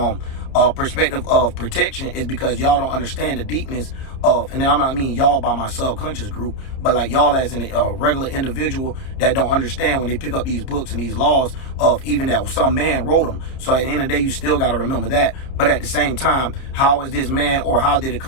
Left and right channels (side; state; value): right; late; 30 ms